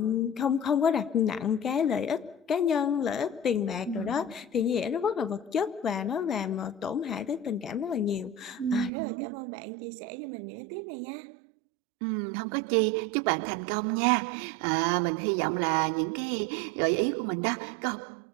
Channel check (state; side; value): drops out; left; at 8.9 s